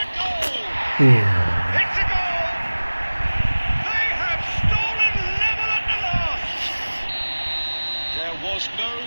goal! It's a goal! They have stolen level at the last! There was no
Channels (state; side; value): inverted; both; correlation -1.00